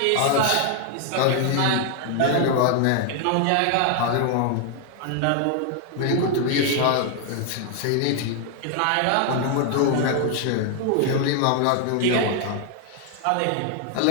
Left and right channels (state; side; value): different; both; correlation 0.00